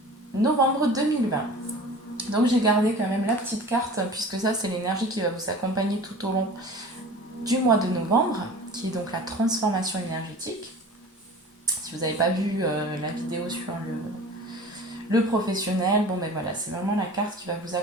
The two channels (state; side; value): normal; both; correlation 0.40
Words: novembre 2020. Donc j'ai gardé quand même la petite carte puisque ça c'est l'énergie qui va vous accompagner tout au long du mois de novembre, qui est donc la transformation énergétique. Si vous n'avez pas vu la vidéo sur le professionnel, bon ben voilà, c'est vraiment la carte qui va vous